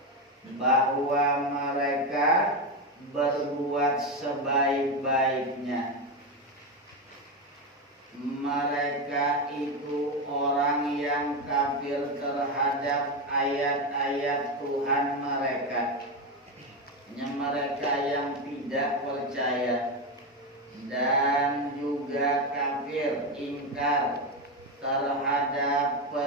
bahwa mereka berbuat sebaik-baiknya. Mereka itu orang yang kafir terhadap ayat-ayat Tuhan mereka. Mereka yang tidak percaya dan juga kafir, ingkar terhadap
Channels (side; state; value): both; normal; correlation 0.12